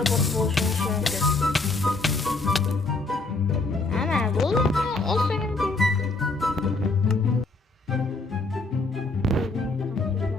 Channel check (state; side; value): quieter; right; 3.4 dB